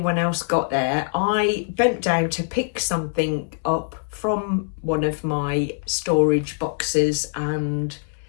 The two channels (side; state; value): right; silent; 62 dB below the other